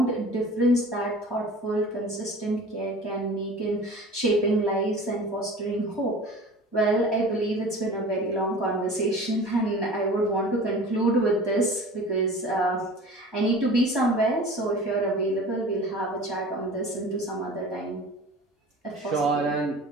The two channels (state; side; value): normal; both; correlation 0.40